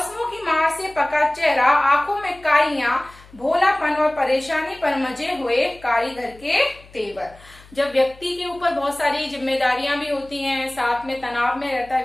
की मार से पका चेहरा, आंखों में काइयां, भोलापन और परेशानी पर मजे हुए कारीगर के तेवर। जब व्यक्ति के ऊपर बहुत सारी जिम्मेदारियां भी होती हैं, साथ में तनाव में रहता है,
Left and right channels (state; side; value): noise; left; hum, 24 dB below the sound